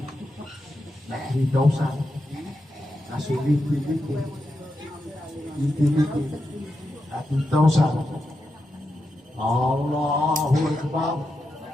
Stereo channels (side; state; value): both; normal; correlation 0.87